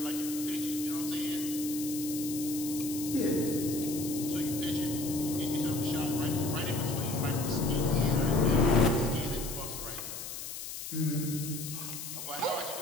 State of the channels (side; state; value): left; noise; hiss, 8 dB below the sound